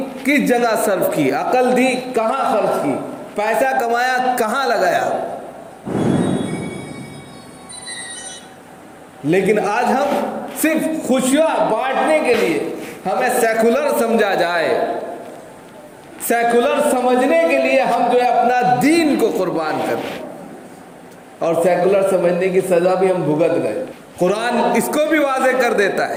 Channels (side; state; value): both; identical; correlation 1.00